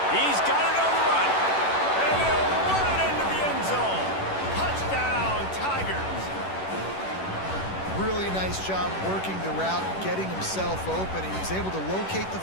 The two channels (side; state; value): right; late; 11 ms